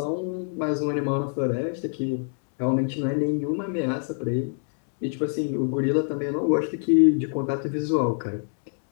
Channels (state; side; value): silent; right; 59 dB below the other